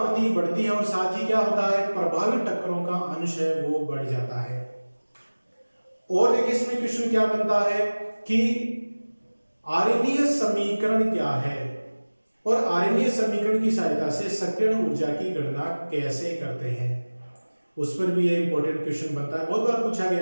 बढ़ती है और साथ ही क्या होता है, प्रभावी टक्करों का अंश है वो बढ़ जाता है। और देखिए इसमें क्वेश्चन क्या बनता है कि आर्यनीय समीकरण क्या है और आर्यनीय समीकरण की सहायता से सक्रियण ऊर्जा की गणना कैसे करते हैं, उस पर भी ये इंपॉर्टेंट क्वेश्चन बनता है। बहुत बार पूछा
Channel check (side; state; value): both; inverted; correlation -1.00